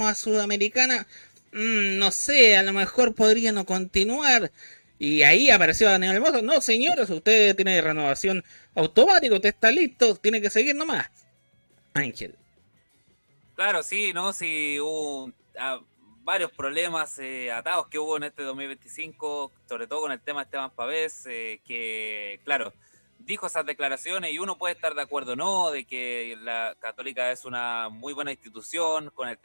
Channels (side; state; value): both; inverted; correlation -1.00